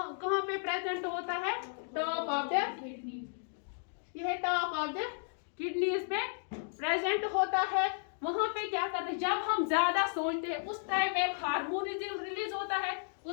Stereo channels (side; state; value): right; silent; digital silence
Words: कहाँ पे प्रेजेंट होता है, टॉप ऑफ द किडनी, यह टॉप ऑफ द किडनीज में प्रेजेंट होता है। वहां पे क्या करते हैं, जब हम ज्यादा सोचते हैं उस टाइम एक हार्मोन रिलीज होता है,